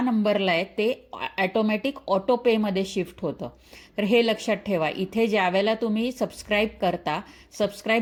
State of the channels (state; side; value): identical; both; correlation 1.00